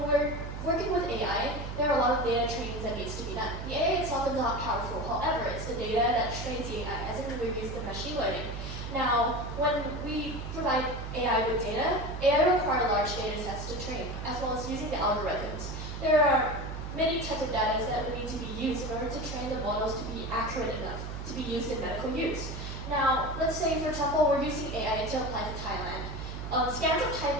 we're working with AI, there are a lot of data trainings that needs to be done. The AI itself is not powerful, however, it's the data that trains the AI, as in we use the machine learning. Now, when we provide AI with data, AI requires large data sets to train, as well as using the algorithms. There are many types of data that would need to be used in order to train the models to be accurate enough to be used in medical use. Now, let's say, for example, we're using AI to apply to Thailand. Scans of Thai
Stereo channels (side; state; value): right; noise; hum, 7 dB below the sound